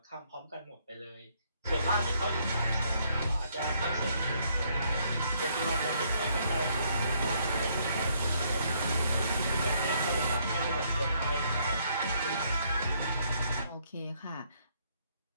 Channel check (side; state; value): both; inverted; correlation -0.69